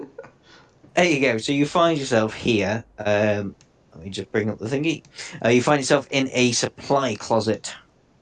There you go. So you find yourself here. Let me just bring up the thingy. You find yourself in a supply closet.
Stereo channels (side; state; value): both; identical; correlation 1.00